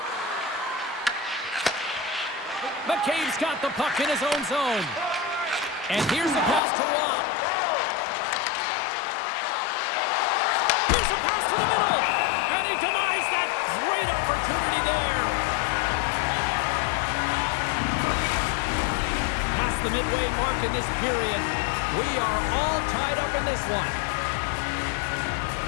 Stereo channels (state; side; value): drops out; right; at 6.6 s